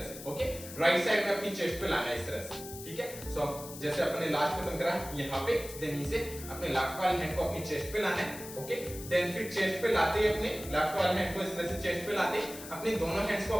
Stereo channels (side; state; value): left; noise; hiss, 13 dB below the sound